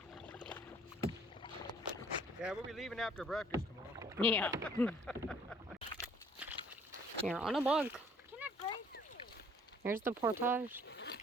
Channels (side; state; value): both; normal; correlation 0.58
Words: Yeah, we'll be leaving after breakfast tomorrow. Yeah. Here on a bug. Can I break? Here's the portage.